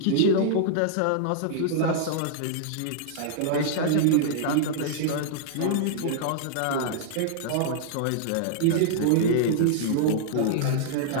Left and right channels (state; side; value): different; both; correlation -0.01